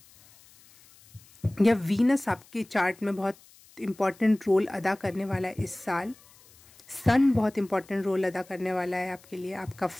या वीनस आपके चार्ट में बहुत इम्पॉर्टेंट रोल अदा करने वाला है इस साल। सन बहुत इम्पॉर्टेंट रोल अदा करने वाला है आपके लिए। आपका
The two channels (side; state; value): left; noise; hiss, 26 dB below the sound